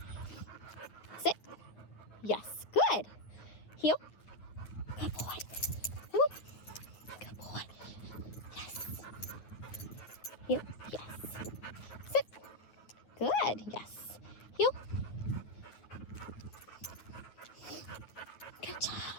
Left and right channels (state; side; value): late; right; 9.3 ms